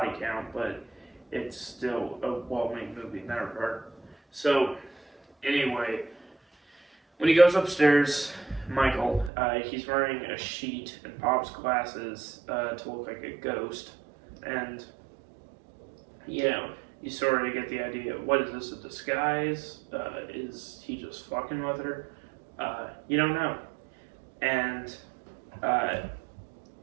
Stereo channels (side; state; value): left; drops out; at 9.3 s